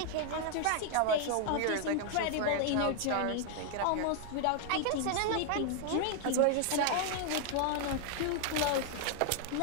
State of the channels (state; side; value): different; both; correlation 0.00